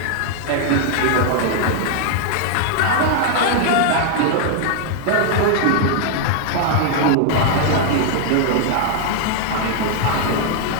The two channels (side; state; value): both; different; correlation 0.00